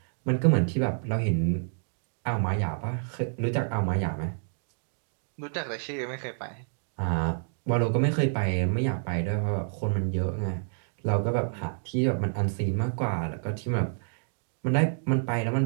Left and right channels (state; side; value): silent; left; digital silence